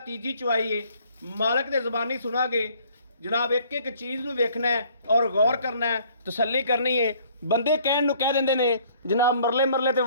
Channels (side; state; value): both; inverted; correlation -0.59